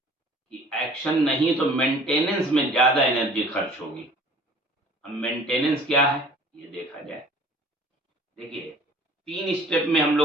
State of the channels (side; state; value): both; normal; correlation 0.50